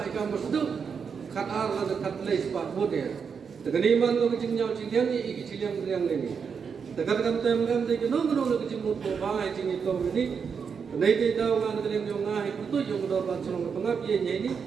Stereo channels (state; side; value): quieter; left; 6.2 dB